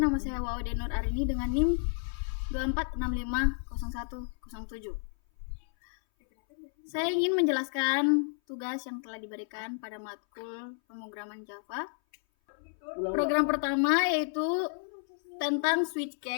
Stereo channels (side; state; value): right; silent; 57 dB below the other